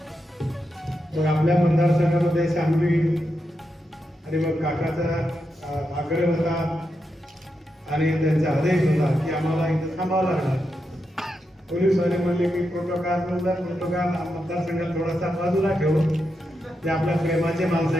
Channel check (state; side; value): normal; both; correlation 0.86